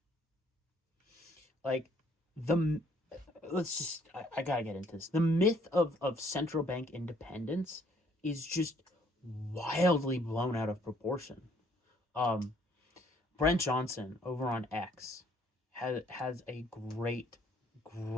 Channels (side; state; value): both; normal; correlation 0.64